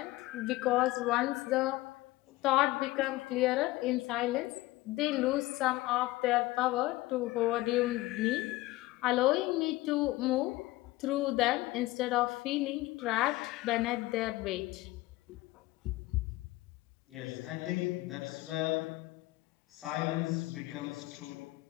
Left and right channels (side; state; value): right; quieter; 18.9 dB